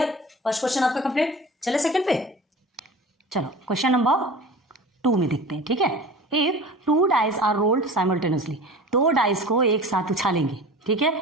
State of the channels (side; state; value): both; normal; correlation 0.38